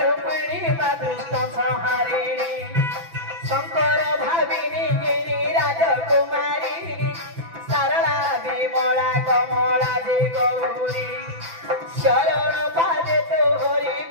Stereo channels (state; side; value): late; left; 6.0 ms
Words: ମା ଦୁଷ୍ଟ ସଂହାରିଣୀ ଶଙ୍କର ଭାବିନୀ ଗିରି ରାଜକୁମାରୀ ସାରଳା ବିମଳା କମଳା ଯେ ଗୌରୀ ଶରଣ ପାଦେ ତୋହରି